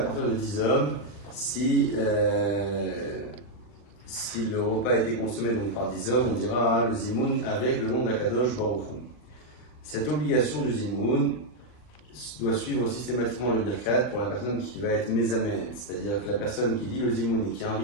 de 10 hommes, si le repas a été consommé donc par 10 hommes, on dira le zimoun avec le nom d'Akadosh Baruch Hu. Cette obligation du zimoun doit suivre systématiquement le birkat pour la personne qui va être mésamen, c'est-à-dire que la personne qui dit le zimoun et qui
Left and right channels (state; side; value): late; right; 39 ms